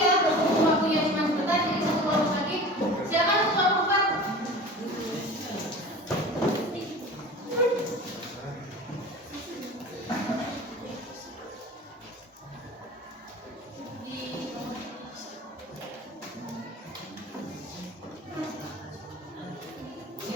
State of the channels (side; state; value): both; normal; correlation 0.37